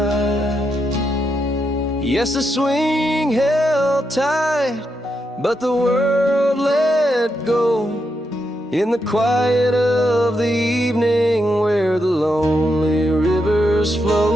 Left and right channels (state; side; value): normal; both; correlation 0.83